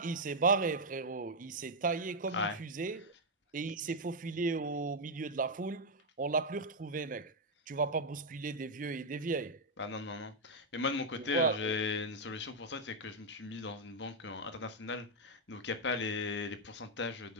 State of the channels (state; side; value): normal; both; correlation -0.01